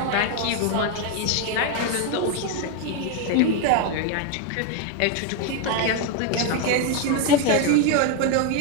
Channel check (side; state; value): both; different; correlation 0.01